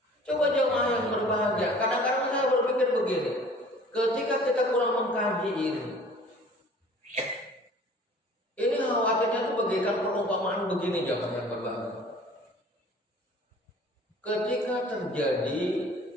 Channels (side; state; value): both; normal; correlation 0.49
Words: coba jemaah yang berbahagia. Kadang-kadang saya berpikir begini, ketika kita kurang mengkaji ini khawatirnya itu bagaikan perumpamaan begini jemaah yang berbahagia. Ketika terjadi